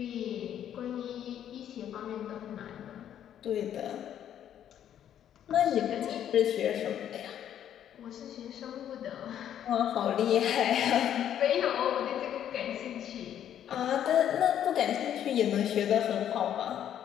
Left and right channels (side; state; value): right; quieter; 10.2 dB